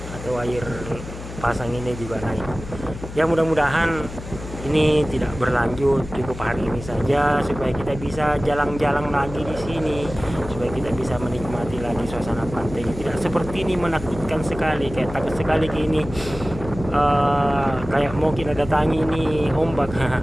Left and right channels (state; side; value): noise; left; hum, 11 dB below the sound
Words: atau air pasang ini juga naik. Ya mudah-mudahan ini tidak berlanjut, cukup hari ini saja supaya kita bisa jalan-jalan lagi di sini, supaya kita bisa menikmati lagi suasana pantai. Tidak seperti ini menakutkan sekali, kayak takut sekali ini kayak mau kita datangi ini ombak.